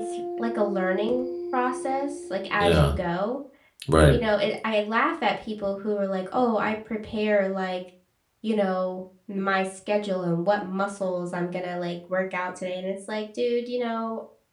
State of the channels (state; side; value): identical; both; correlation 1.00